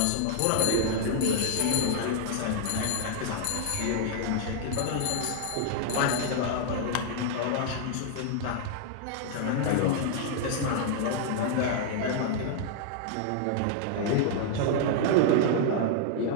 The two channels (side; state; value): both; different; correlation 0.00